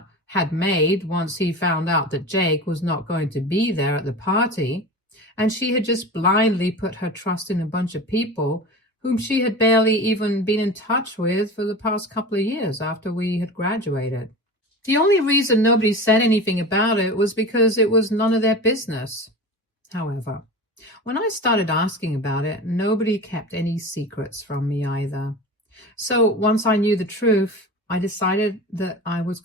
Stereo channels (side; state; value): both; normal; correlation 0.31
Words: had made once he found out that Jake was not going to be there at the party, and she had just blindly put her trust in a bunch of people whom she had barely even been in touch with for the past couple of years after we had graduated. The only reason nobody said anything about it was because it was none of their business. However, when I started asking about it, nobody kept any secrets from me either. So once I knew the truth, I decided that I was